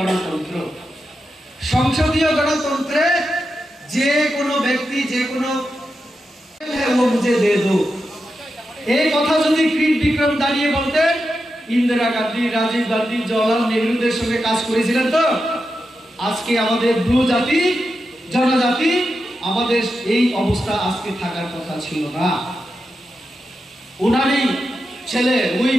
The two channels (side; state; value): both; normal; correlation 0.88